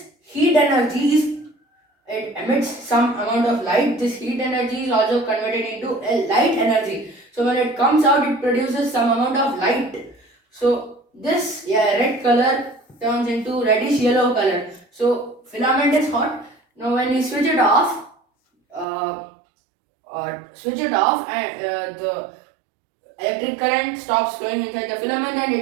heat energy it emits some amount of light. This heat energy is also converted into a light energy. So when it comes out, it produces some amount of light. So this red color turns into reddish yellow color. So filament is hot. Now when we switch it off, and the electric current stops flowing inside the filament and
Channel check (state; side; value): drops out; left; at 18.9 s